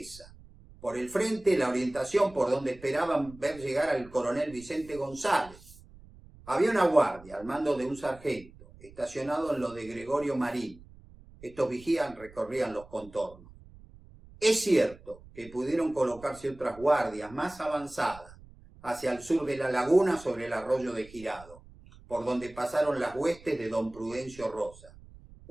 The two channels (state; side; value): noise; right; rumble, 21 dB below the sound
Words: Por el frente, la orientación por donde esperaban ver llegar al coronel Vicente González. Había una guardia al mando de un sargento, estacionado en lo de Gregorio Marín. Estos vigías recorrían los contornos. Es cierto que pudieron colocarse otras guardias más avanzadas hacia el sur de la laguna sobre el arroyo de Girado, por donde pasaron las huestes de don Prudencio Rosa,